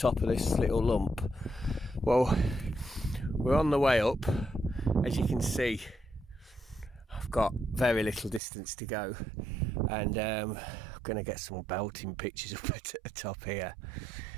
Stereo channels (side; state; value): left; drops out; at 8.4 s